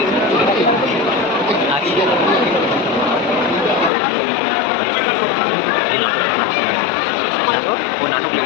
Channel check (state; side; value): drops out; right; at 3.9 s